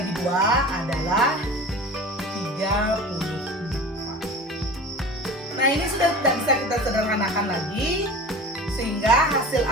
2 adalah 34. Nah, ini sudah tidak bisa kita sederhanakan lagi, sehingga hasil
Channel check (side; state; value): both; normal; correlation 0.36